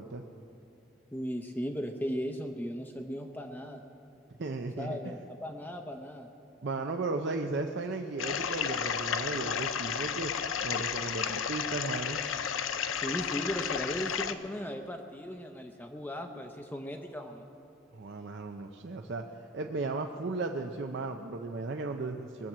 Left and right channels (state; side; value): normal; both; correlation 0.31